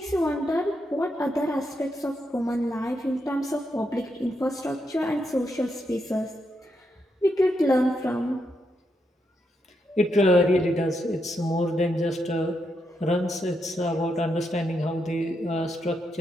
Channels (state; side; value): normal; both; correlation 0.82